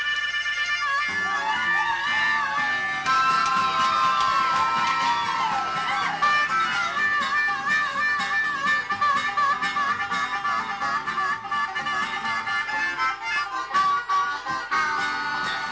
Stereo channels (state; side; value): identical; both; correlation 1.00